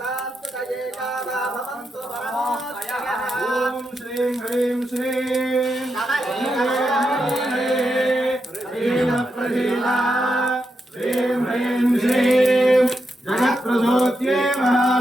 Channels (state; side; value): normal; both; correlation 0.85